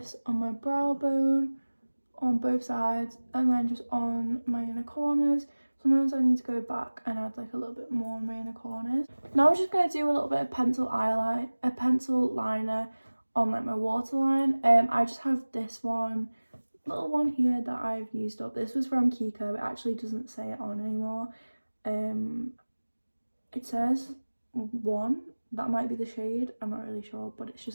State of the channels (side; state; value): both; inverted; correlation -1.00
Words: on my brow bone, on both sides, and then just on my inner corners. Sometimes I need to go back and add like a little bit more on my inner corners. Now I'm just going to do a little bit of pencil liner on like my waterline. I just have this little one here that I've used up. This was from Kiko. It actually doesn't say it on anymore. It says 1, that might be the shade, I'm not really sure, but it's